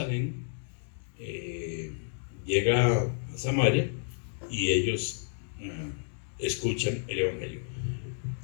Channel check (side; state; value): right; silent; digital silence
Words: llega a Samaria, y ellos escuchan el evangelio.